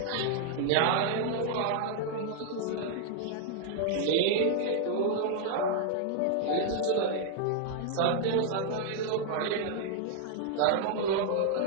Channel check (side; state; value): both; different; correlation -0.01